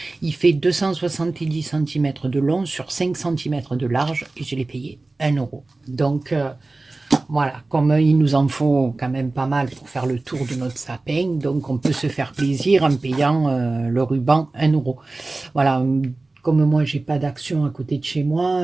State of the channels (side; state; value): left; quieter; 3.2 dB